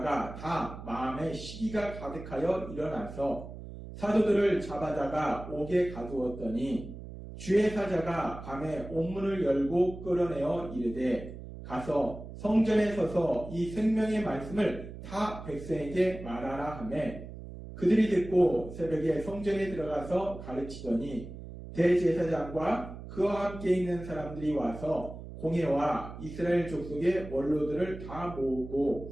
다 마음에 시기가 가득하여 일어나서 사도들을 잡아다가 옥에 가두었더니 주의 사자가 밤에 옥문을 열고 끌어내어 이르되 가서 성전에 서서 이 생명의 말씀을 다 백성에게 말하라 하매 그들이 듣고 새벽에 성전에 들어가서 가르치더니 대제사장과 그와 함께 있는 사람들이 와서 공회와 이스라엘 족속의 원로들을 다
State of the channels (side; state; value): right; noise; hum, 12 dB below the sound